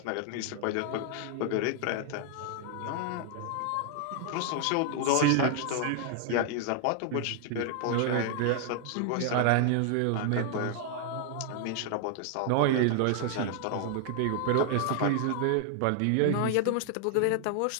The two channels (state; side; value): different; both; correlation 0.00